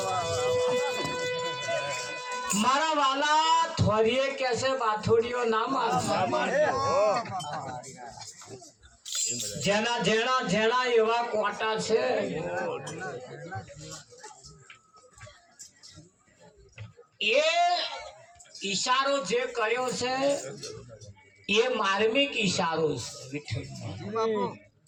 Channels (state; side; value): identical; both; correlation 1.00